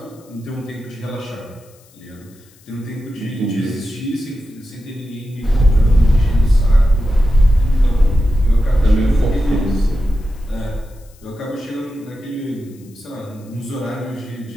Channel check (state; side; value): noise; left; hiss, 29 dB below the sound